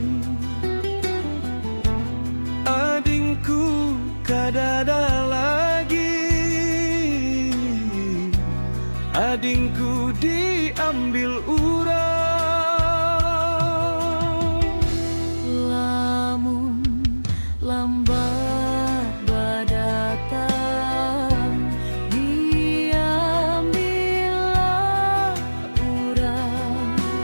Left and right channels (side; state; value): both; inverted; correlation -1.00